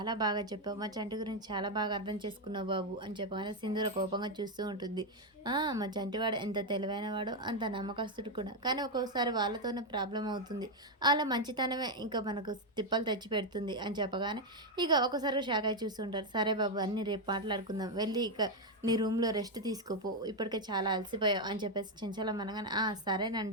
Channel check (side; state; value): both; normal; correlation 0.03